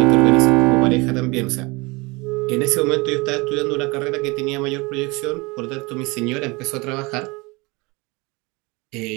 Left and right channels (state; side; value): quieter; left; 25.5 dB